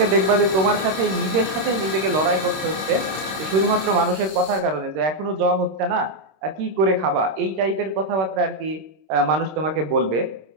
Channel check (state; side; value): late; left; 26 ms